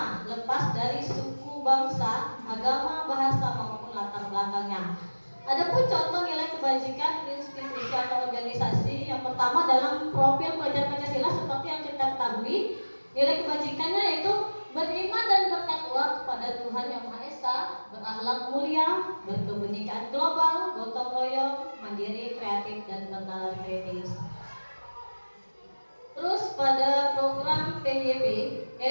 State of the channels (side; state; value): both; inverted; correlation -1.00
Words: lepas dari suku, bangsa, agama, bahasa maupun latar belakangnya. Adapun contoh nilai kebajikan institusi atau organisasi, yang pertama dalam profil pelajar Pancasila seperti yang kita ketahui, nilai kebajikannya yaitu beriman dan bertakwa kepada Tuhan Yang Maha Esa, berakhlak mulia, berkebenekaan global, gotong royong, mandiri, kreatif, dan bernalar kritis. Terus pada program PYB,